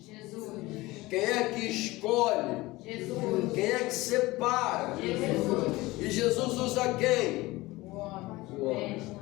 Jesus. Quem é que escolhe? Jesus. Quem é que separa? Jesus. E Jesus usa quem? O homem. O homem.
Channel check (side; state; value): right; quieter; 20.2 dB